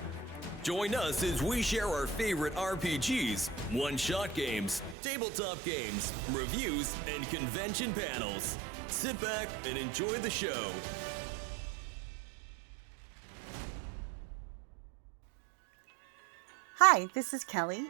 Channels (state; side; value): drops out; left; at 5.0 s